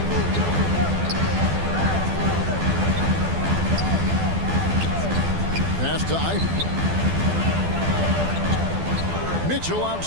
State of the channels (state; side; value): late; left; 12 ms